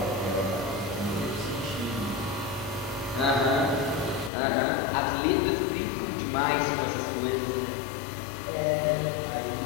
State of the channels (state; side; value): drops out; right; at 4.3 s